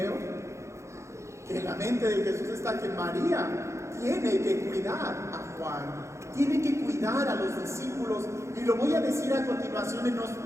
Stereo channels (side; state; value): left; late; 0.14 ms